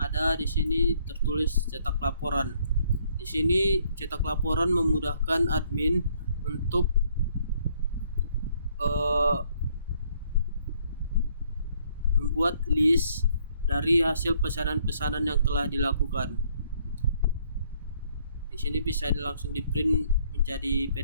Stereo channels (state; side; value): inverted; both; correlation -0.66